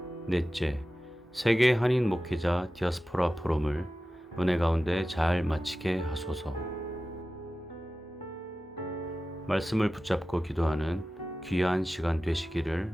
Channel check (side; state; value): both; normal; correlation 0.94